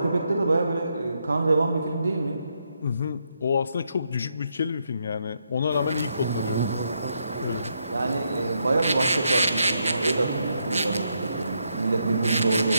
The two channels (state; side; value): inverted; both; correlation -0.79